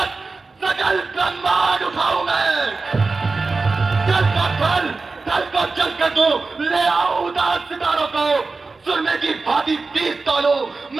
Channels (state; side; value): quieter; left; 3.9 dB